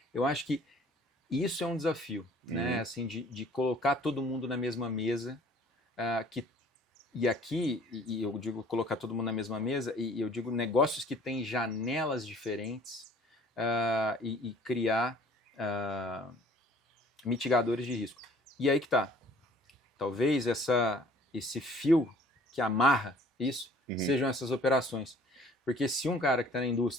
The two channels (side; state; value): both; normal; correlation 0.53